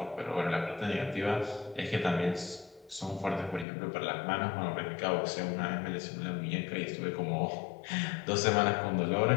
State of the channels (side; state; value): right; drops out; at 3.7 s